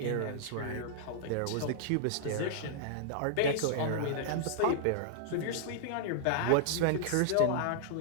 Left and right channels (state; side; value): different; both; correlation -0.01